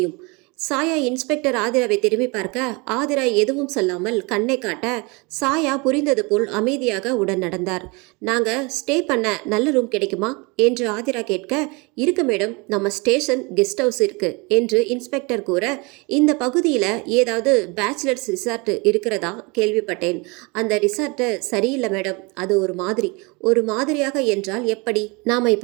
சாயா இன்ஸ்பெக்டர் ஆதிராவை திரும்பி பார்க்க ஆதிரா எதுவும் சொல்லாமல் கண்ணை காட்ட சாயா புரிந்தது போல் அமைதியாக உடன் நடந்தார். நாங்க ஸ்டே பண்ண நல்ல ரூம் கிடைக்குமா என்று ஆதிரா கேட்க, இருக்கு மேடம், நம்ம ஸ்டேஷன் கெஸ்ட் ஹவுஸ் இருக்கு என்று இன்ஸ்பெக்டர் கூற, இந்த பகுதியில் ஏதாவது பேச்சுலர்ஸ் ரிசார்ட் இருக்கிறதா கேள்விப்பட்டேன். அந்த ரிசார்ட் சரியில்லை மேடம், அது ஒரு மாதிரியாக என்றால் எப்படி? நாம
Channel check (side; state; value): left; quieter; 28.1 dB